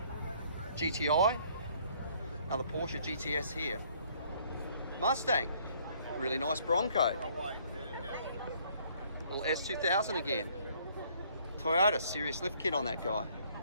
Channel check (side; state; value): both; inverted; correlation -0.62